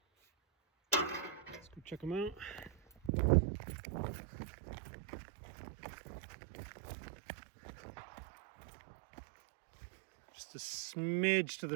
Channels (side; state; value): left; drops out; at 3.1 s